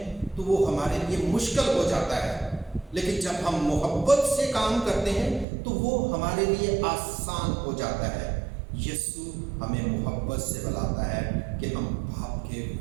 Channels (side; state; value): left; drops out; at 5.5 s